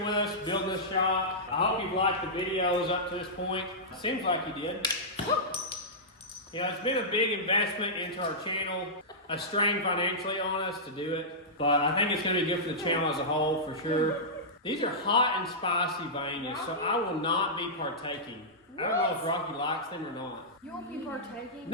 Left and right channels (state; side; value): normal; both; correlation -0.14